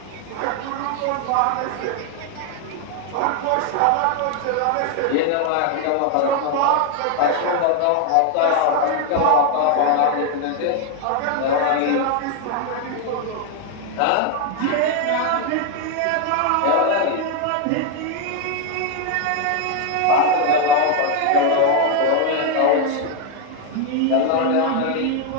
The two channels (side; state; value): both; different; correlation 0.01